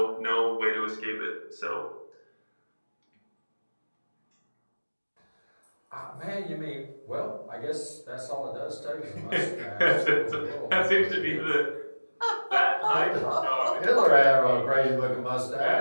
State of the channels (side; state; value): both; inverted; correlation -1.00